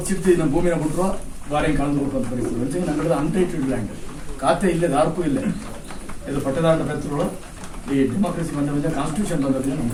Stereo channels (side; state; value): both; identical; correlation 1.00